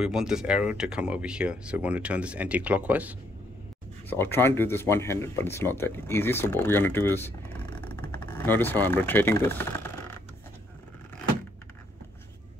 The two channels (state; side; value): normal; both; correlation 0.71